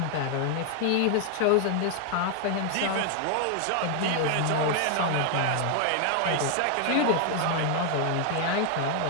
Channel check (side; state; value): both; different; correlation 0.00